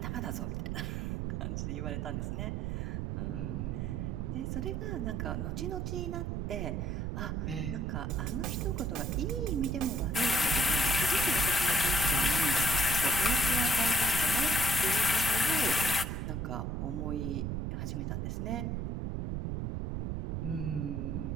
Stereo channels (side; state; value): right; noise; rumble, 2 dB below the sound